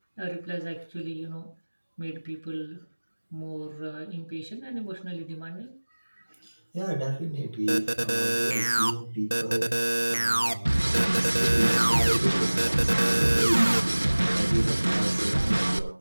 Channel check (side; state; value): both; inverted; correlation -1.00